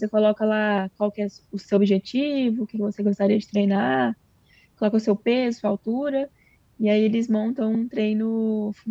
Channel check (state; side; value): identical; both; correlation 1.00